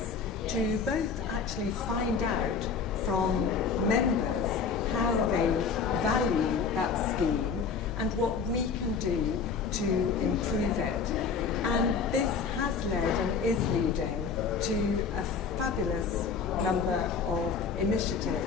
to both actually find out from members how they value that scheme and what we can do to improve it. And this has led and is leading to a fabulous number of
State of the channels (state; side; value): quieter; right; 5.6 dB